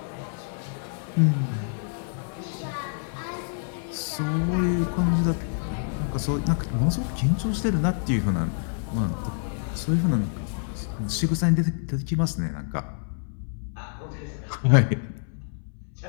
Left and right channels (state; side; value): silent; right; 60 dB below the other